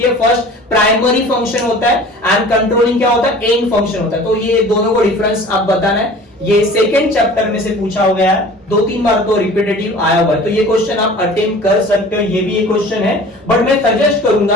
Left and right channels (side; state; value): both; normal; correlation 0.43